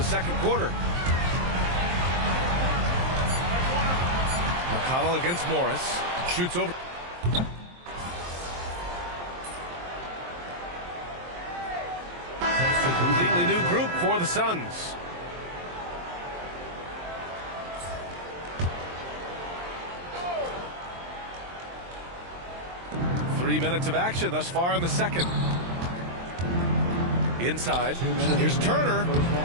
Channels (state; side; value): late; left; 23 ms